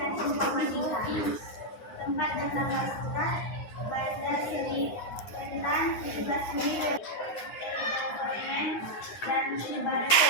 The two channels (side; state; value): right; late; 9.5 ms